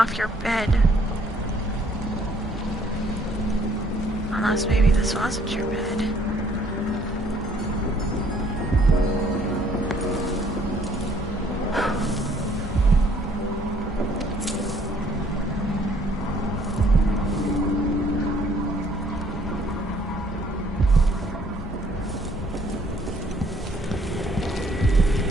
your bed? Unless maybe this wasn't your bed.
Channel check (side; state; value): both; normal; correlation 0.62